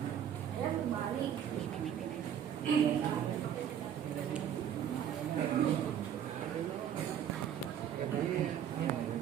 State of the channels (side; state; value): left; quieter; 9.5 dB